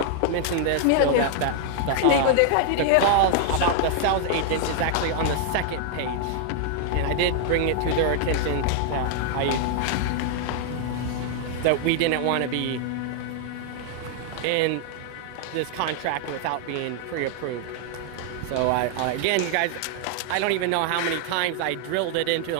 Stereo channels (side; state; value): both; different; correlation 0.00